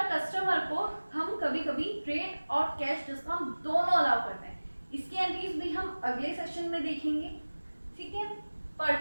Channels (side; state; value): both; inverted; correlation -1.00